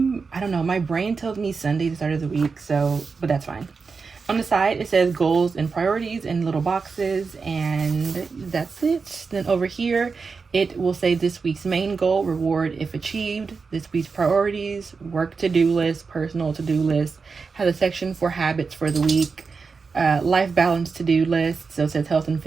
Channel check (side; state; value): left; quieter; 4.9 dB